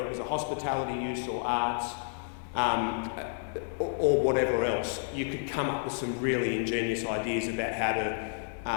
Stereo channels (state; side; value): silent; right; digital silence